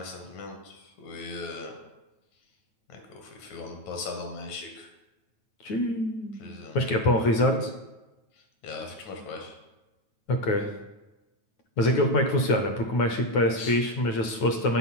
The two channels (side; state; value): right; late; 9.2 ms